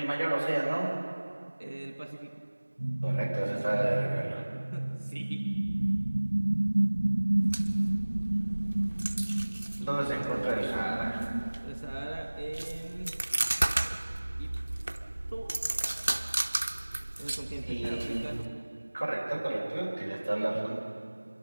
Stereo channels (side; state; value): both; inverted; correlation -1.00